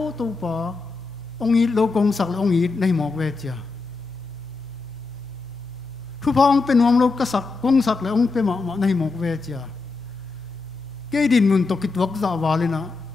tu pa ong i lo kong sak ong i nei mok ve chia thu phong pen om lo ka sak kong sak le ong pe ma nei mok ve chia ke din mun to ki tuak za walina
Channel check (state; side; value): quieter; right; 4.0 dB